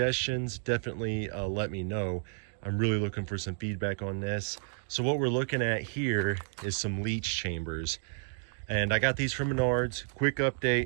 definitely let me know. I'm really looking for some feedback on this. So what we're looking at here is some leach chambers. And I got these from Menards. Quick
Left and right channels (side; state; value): left; silent; digital silence